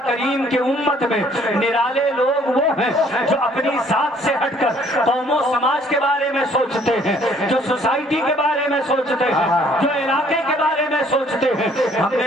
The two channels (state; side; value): normal; both; correlation 0.60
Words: کریم کی امت میں نرالے لوگ وہ ہیں جو اپنی ذات سے ہٹ کر قوم و سماج کے بارے میں سوچتے ہیں، جو سوسائٹی کے بارے میں سوچتے ہیں، جو علاقے کے بارے میں سوچتے ہیں۔ ہم نے